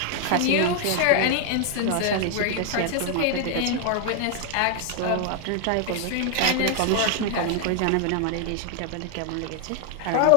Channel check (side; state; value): both; different; correlation 0.00